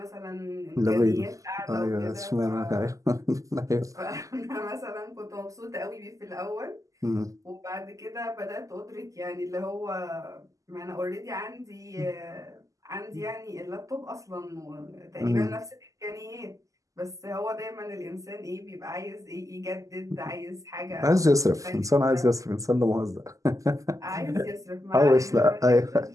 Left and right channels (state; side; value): late; left; 0.16 ms